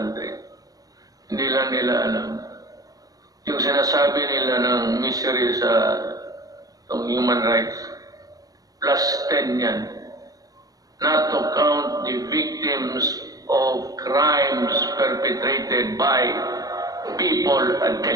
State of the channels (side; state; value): left; late; 0.18 ms